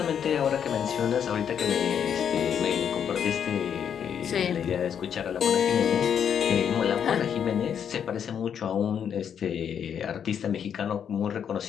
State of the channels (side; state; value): right; quieter; 8.2 dB